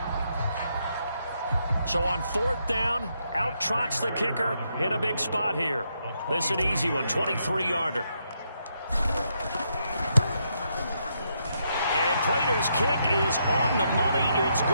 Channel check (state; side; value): inverted; both; correlation -0.78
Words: So on 4th down, out trots the kicker in a big spot here. This is an easy one, 23-yarder. And Prater's kick is on the money. It's